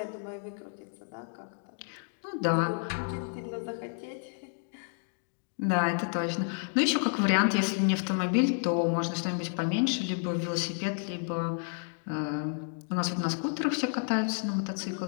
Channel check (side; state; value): right; silent; 57 dB below the other